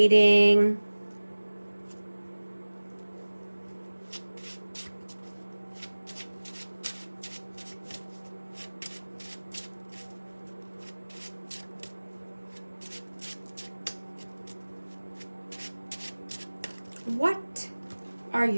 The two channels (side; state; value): both; inverted; correlation -1.00